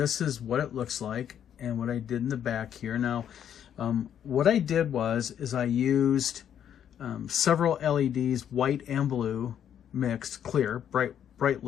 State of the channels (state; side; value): quieter; right; 9.4 dB